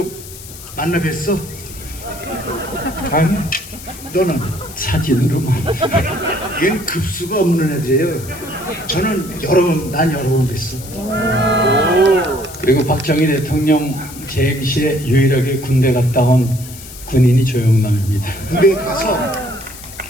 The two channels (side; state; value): left; noise; hiss, 15 dB below the sound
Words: 만나 뵀어? 아니, 너는 사진으로만. 얘는 급수가 없는 애들이에요. 난 여러 번 뵀어. 그리고 박정희 대통령 재임 시에 유일하게 군대 갔다 온 군인이 조영남입니다. 군대 가서